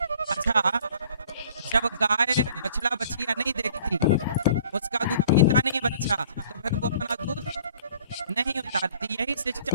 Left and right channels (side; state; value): both; inverted; correlation -0.53